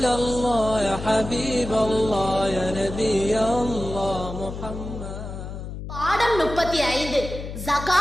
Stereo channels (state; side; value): noise; left; hum, 9 dB below the sound